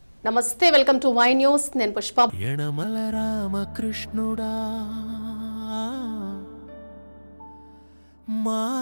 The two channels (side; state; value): both; inverted; correlation -1.00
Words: నమస్తే, welcome to my news. నేను పుష్ప. యనమల రామకృష్ణుడా